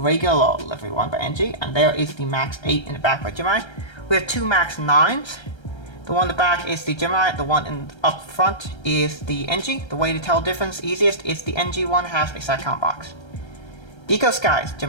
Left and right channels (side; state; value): right; late; 1.3 ms